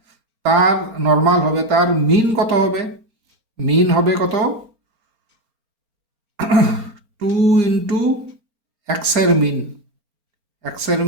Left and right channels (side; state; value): left; late; 4.4 ms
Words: তার নর্মাল হবে। তার মিন কত হবে? মিন হবে কত? 2 ইন্টু এক্সের মিন। এক্সের